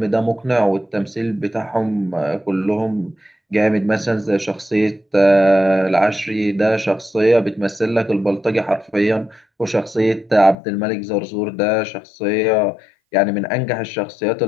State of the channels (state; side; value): drops out; right; at 10.6 s